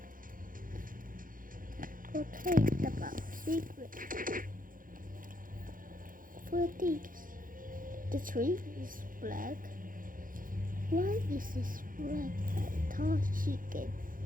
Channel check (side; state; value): left; late; 0.40 ms